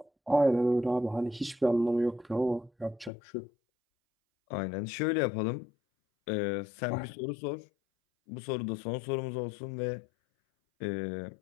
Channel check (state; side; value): drops out; right; at 3.1 s